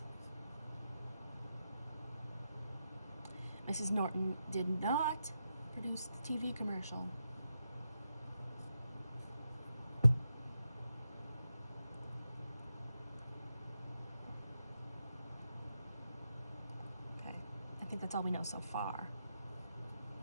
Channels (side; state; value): both; inverted; correlation -0.86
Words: Mrs. Norton did not produce the TV commercial. Okay, I think that's all we know so far.